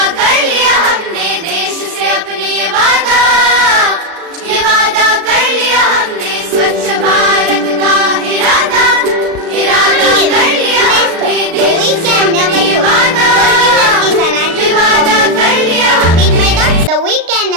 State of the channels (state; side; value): late; left; 36 ms